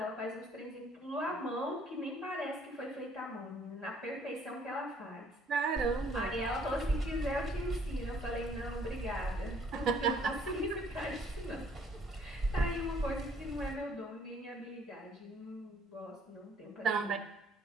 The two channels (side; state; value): both; normal; correlation 0.61